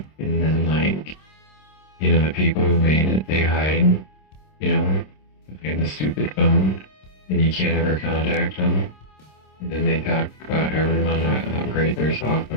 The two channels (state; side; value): late; right; 26 ms